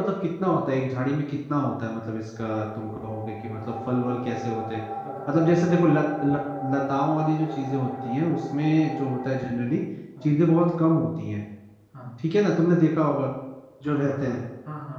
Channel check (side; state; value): both; identical; correlation 1.00